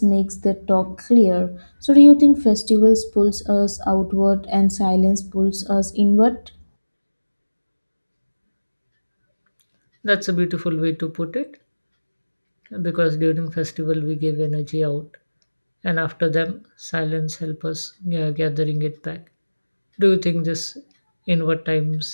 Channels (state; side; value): inverted; both; correlation -1.00